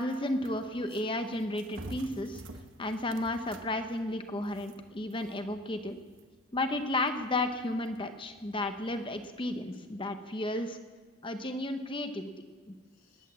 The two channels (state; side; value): normal; both; correlation 0.48